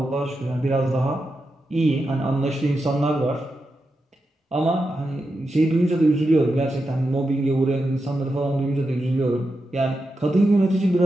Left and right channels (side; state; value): both; normal; correlation 0.88